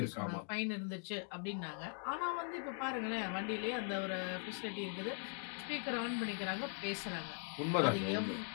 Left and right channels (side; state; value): right; silent; 50 dB below the other